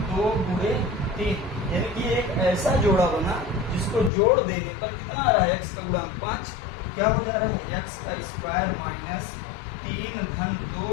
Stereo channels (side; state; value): right; drops out; at 4.1 s